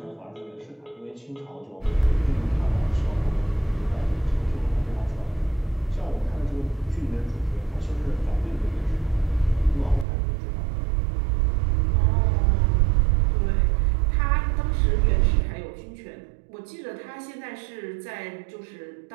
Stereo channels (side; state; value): left; drops out; at 10.1 s